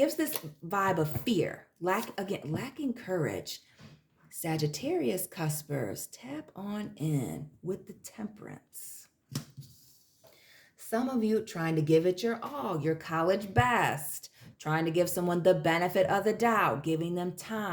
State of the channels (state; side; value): identical; both; correlation 1.00